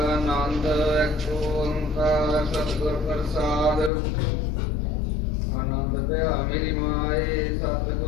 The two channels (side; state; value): right; drops out; at 3.9 s